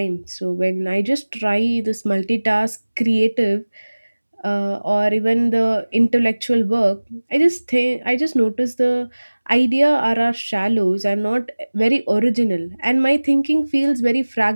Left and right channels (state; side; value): inverted; both; correlation -1.00